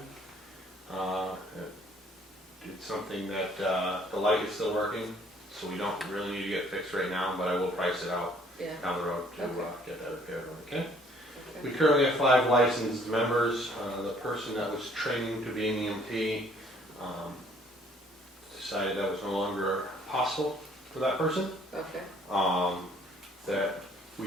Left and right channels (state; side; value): normal; both; correlation 0.60